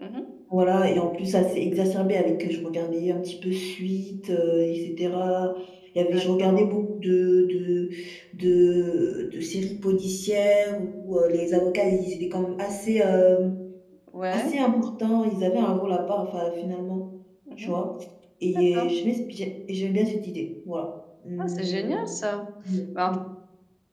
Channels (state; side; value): identical; both; correlation 1.00